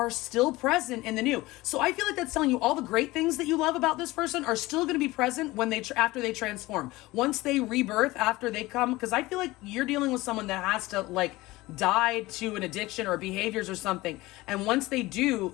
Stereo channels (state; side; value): quieter; right; 19.8 dB